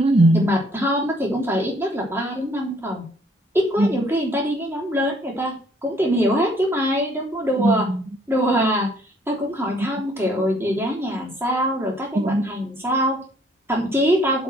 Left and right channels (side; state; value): both; normal; correlation 0.63